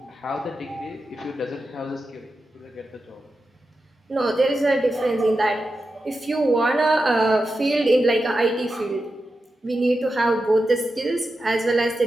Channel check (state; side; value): normal; both; correlation 0.90